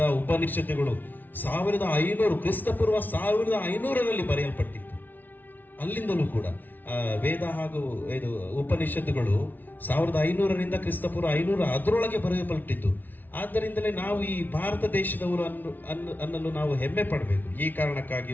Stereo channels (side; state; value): right; late; 0.084 ms